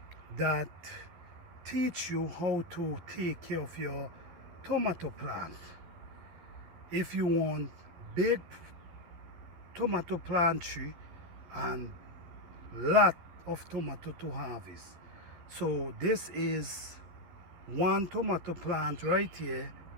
that teach you how to take care of your tomato plant. If you want big tomato plant tree and lot of tomato to harvest. So this is 1 tomato plant right here,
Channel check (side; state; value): left; late; 12 ms